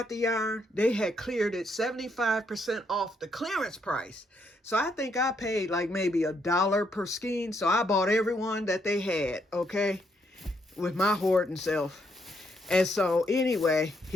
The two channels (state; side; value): normal; both; correlation 0.75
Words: the yarn, they had cleared it 75% off the clearance price. So I think I paid like maybe $1 per skein. So I bought every one that they had, okay, with my hoarding self. And so anyway,